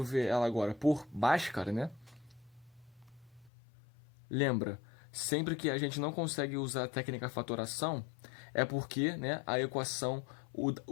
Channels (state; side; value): drops out; right; at 3.5 s